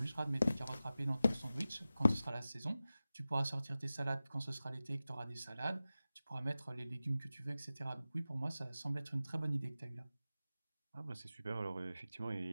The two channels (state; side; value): inverted; both; correlation -0.95